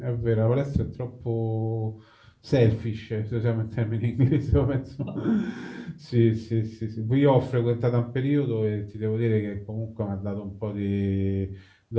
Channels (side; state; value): both; identical; correlation 1.00